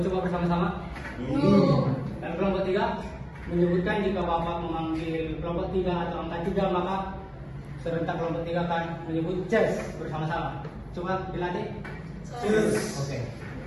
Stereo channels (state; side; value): identical; both; correlation 1.00